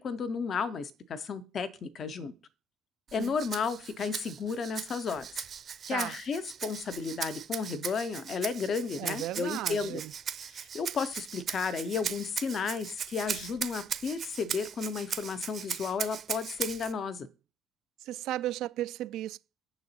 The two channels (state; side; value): normal; both; correlation 0.65